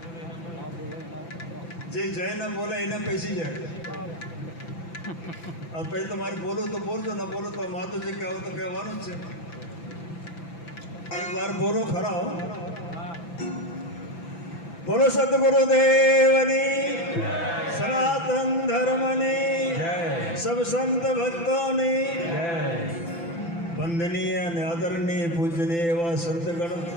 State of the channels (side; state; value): right; late; 5.9 ms